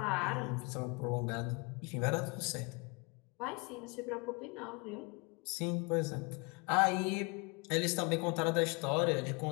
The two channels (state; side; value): quieter; right; 30.9 dB